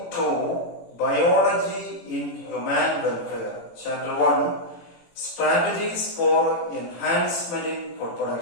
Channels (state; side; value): late; right; 18 ms